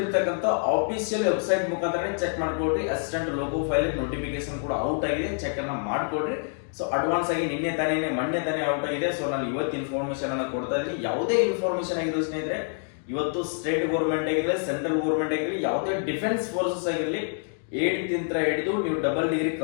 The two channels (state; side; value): silent; right; 57 dB below the other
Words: ಆಫಿಷಿಯಲ್ ವೆಬ್ಸೈಟ್ ಮುಖಾಂತರ ಚೆಕ್ ಮಾಡ್ಕೊಳ್ರಿ. ಅಸಿಸ್ಟೆಂಟ್ ಲೋಗೋ ಫೈಲ್ ನೋಟಿಫಿಕೇಶನ್ ಕೂಡ ಔಟ್ ಆಗಿದೆ, ಚೆಕ್ ಅನ್ನ ಮಾಡ್ಕೊಳ್ರಿ. ಸೊ ಅಡ್ವಾನ್ಸ್ ಆಗಿ ಮೊನ್ನೆ ತಾನೇ ಔಟ್ ಆಗಿದೆ. ಸೊ ನಾನು ಇವತ್ತು ಇನ್ಫಾರ್ಮೇಶನ್ ಅನ್ನ ಕೊಡ್ತಾ ಇದ್ದೀನಿ. ಯಾವುದೇ ಇನ್ಫಾರ್ಮೇಶನ್ ಆಗಿರೋ ಸ್ನೇಹಿತರೆ, ಇವತ್ತು ಸ್ಟೇಟ್ ಗೌರ್ಮೆಂಟ್ ಆಗಿರಲಿ, ಸೆಂಟ್ರಲ್ ಗೌರ್ಮೆಂಟ್ ಆಗಿರಲಿ, ಯಾವುದೇ ಡಿಫೆನ್ಸ್ ಫೋರ್ಸಸ್ ಆಗಿರಲಿ, 8th ಹಿಡಿದು ನೀವು ಡಬಲ್ ಡಿಗ್ರಿ